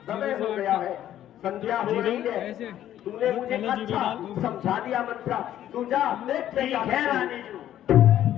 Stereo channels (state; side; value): quieter; right; 11.8 dB